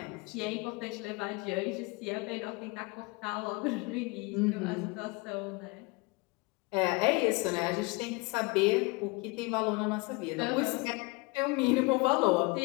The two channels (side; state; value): right; quieter; 26.5 dB